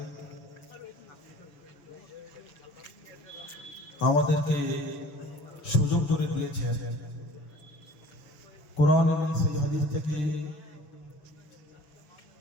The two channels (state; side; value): late; right; 6.5 ms